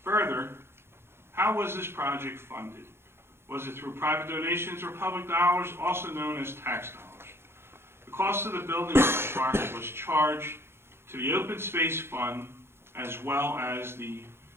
further, how was this project funded? Was it through private donations or public dollars, also known as tax dollars? The cost of the building of the park was charged to the Open Space Fund as well as the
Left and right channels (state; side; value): late; left; 0.12 ms